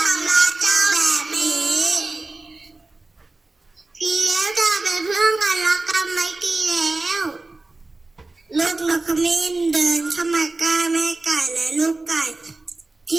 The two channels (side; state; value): left; quieter; 3.3 dB